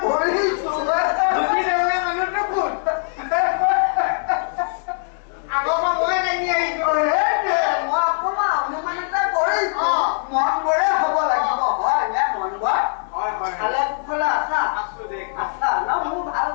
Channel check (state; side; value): silent; right; digital silence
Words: কৰিছো মানুহটো কোন আগৰ মই দাঙি আহিছো মই অকমান অনুমান এটা কৰিছো মন বৰে হ'ব লাগিব হয় নে মন বৰ ভালে কুশলে আছা আছা ন মোৰ ভাল